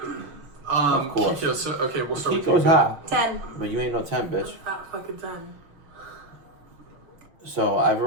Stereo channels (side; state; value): left; late; 5.9 ms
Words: Of course. Kiko, so, okay, we'll start with Kiko's Kiko. hot. 10. But you ain't no 10, bitch. Not fucking 10. So I've